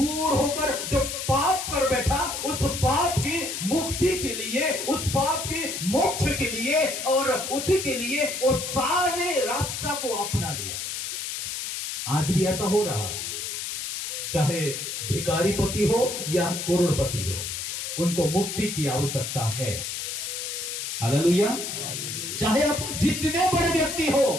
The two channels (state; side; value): noise; left; hiss, 4 dB below the sound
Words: होकर जो पाप कर बैठा, उस पाप की मुक्ति के लिए, उस पाप की मोक्ष के लिए और उसी के लिए वो सारे रास्ता को अपना लिया। आज भी ऐसा हो रहा है, चाहे भिखारी पति हो या करोड़पति हो, उनको मुक्ति की आवश्यकता है। हालेलुया। चाहे आप जितने बड़े व्यक्ति